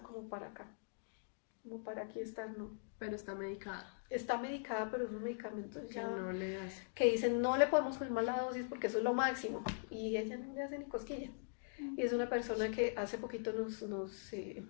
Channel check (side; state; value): right; silent; digital silence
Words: como para acá, como para aquí estar, no. Pero está medicada, Está medicada, pero esos medicamentos que ya, no le hace. que dicen no le podemos subir más la dosis porque eso es lo máximo, y ella no le hace ni cosquillas. Y es una persona que hace poquito nos